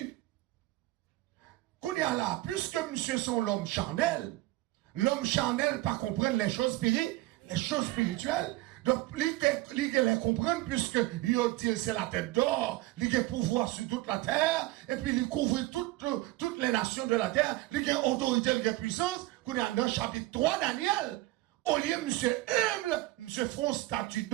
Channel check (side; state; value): left; quieter; 18.5 dB